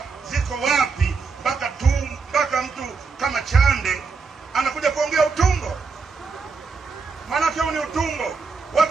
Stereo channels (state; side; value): quieter; left; 4.8 dB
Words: ziko wapi mpaka mtu kama Chande anakuja kuongea utumbo? Maana huu ni utumbo.